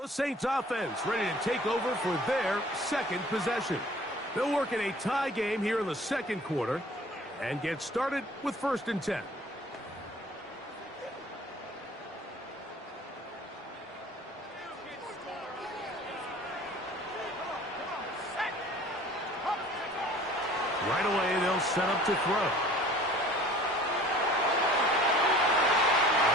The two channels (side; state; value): both; normal; correlation 0.49